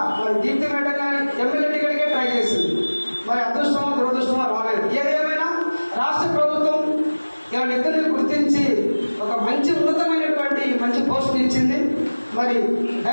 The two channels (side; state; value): both; inverted; correlation -1.00